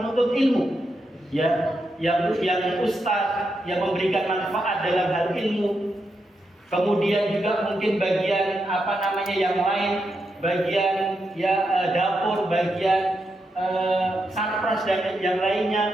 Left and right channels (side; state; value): both; normal; correlation 0.84